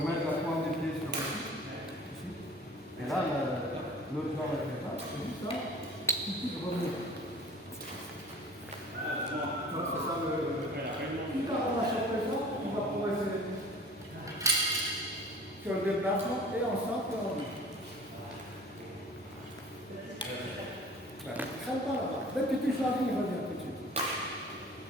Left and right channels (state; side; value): normal; both; correlation 0.44